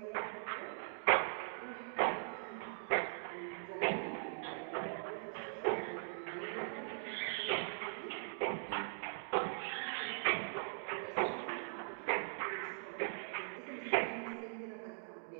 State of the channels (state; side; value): silent; left; digital silence